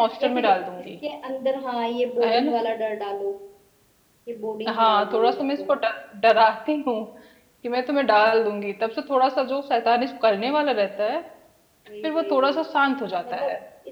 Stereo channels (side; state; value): both; identical; correlation 1.00